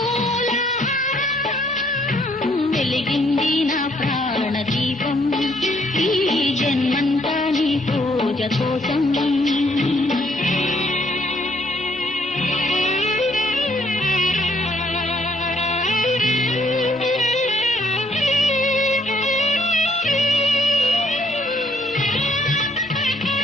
వెలిగింది నా ప్రాణదీపం ఈ జన్మంతా నీ పూజ కోసం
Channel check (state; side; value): normal; both; correlation 0.68